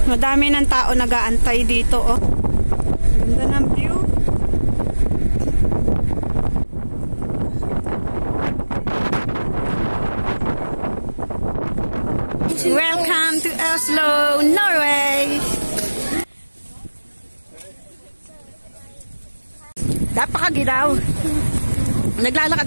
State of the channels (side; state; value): both; inverted; correlation -1.00